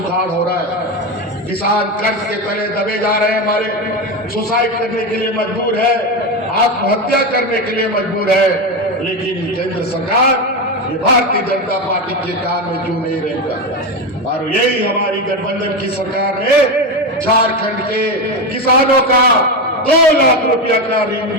हो रहा है। किसान कर्ज के तले दबे जा रहे हैं, हमारे सुसाइड करने के लिए मजबूर है, आत्महत्या करने के लिए मजबूर है। लेकिन केंद्र सरकार ये भारतीय जनता पार्टी के कान में क्यों नहीं रहेगा? और यही हमारी गठबंधन की सरकार ने झारखंड के किसानों का 2 लाख रुपया का ऋण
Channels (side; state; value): both; normal; correlation 0.16